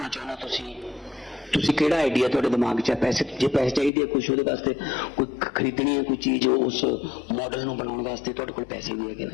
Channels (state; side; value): drops out; right; at 3.9 s